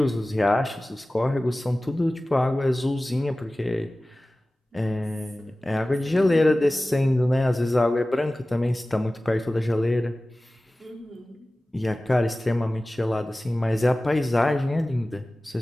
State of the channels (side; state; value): both; normal; correlation 0.97